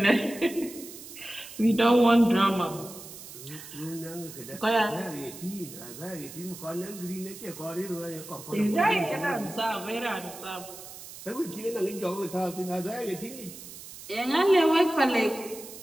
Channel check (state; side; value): noise; right; hiss, 14 dB below the sound